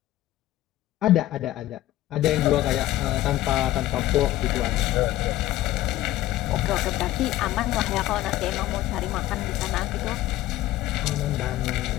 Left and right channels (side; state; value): right; quieter; 15.0 dB